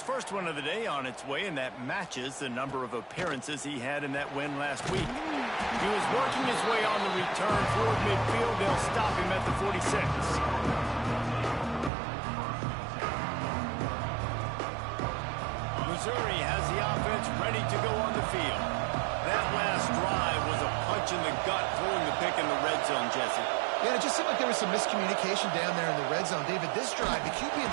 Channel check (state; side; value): drops out; left; at 11.9 s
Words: first one of the day on its way, and that matches the number of appearances he had in that win last week. He was working his way on the return toward midfield. They'll stop him at the 46. Missouri has the offense ready to go on the field. That last drive was a punch in the gut, throwing the pick in the red zone, Jesse. Yeah, it just seemed like there was some miscommunication down there in the red zone. David, this drive, the QB and